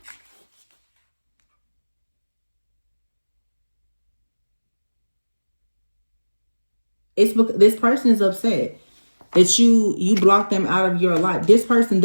It's because this person is upset. that you block them out of your life. This person,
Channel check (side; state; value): both; inverted; correlation -1.00